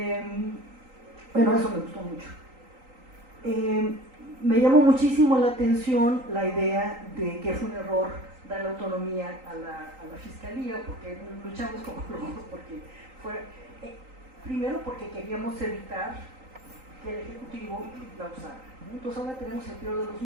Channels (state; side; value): late; left; 3.8 ms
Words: Bueno, eso me gustó mucho. Me llamó muchísimo la atención la idea de que fue un error dar la autonomía a la fiscalía, porque luchamos como locos, porque primero porque queríamos evitar que el Ejecutivo la usara, ¿no? Entonces ahora tenemos el peor de los